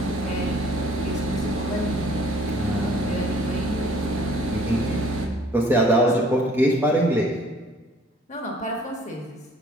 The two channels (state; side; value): normal; both; correlation 0.56